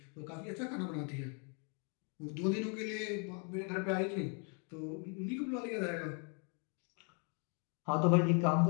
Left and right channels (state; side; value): quieter; right; 38.0 dB